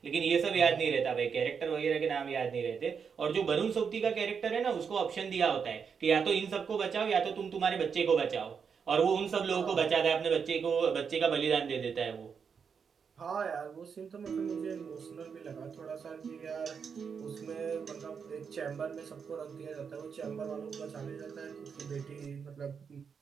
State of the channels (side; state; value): left; quieter; 6.4 dB